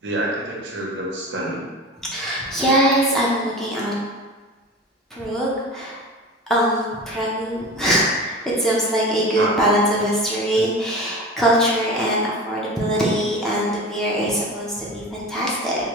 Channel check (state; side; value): normal; both; correlation 0.33